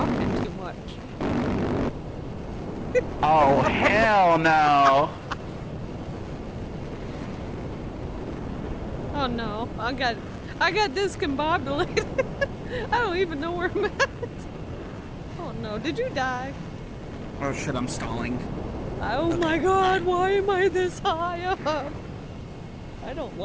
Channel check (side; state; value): both; identical; correlation 1.00